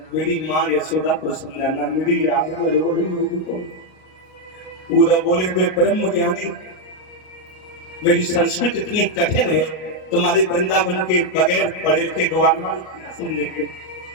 मेरी माँ यशोदा को समझाना, मेरी याद में रो रही हूँ। पूरा बोले मैं ब्रह्म ज्ञानी, मेरी संस्कृत इतनी कठिन है, तुम्हारे वृंदावन के बगैर पढ़े लिखे गवार क्या समझेंगे।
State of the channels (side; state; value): right; late; 38 ms